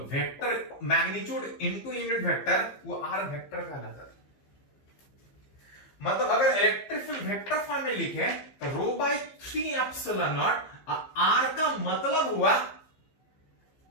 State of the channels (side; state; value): right; late; 15 ms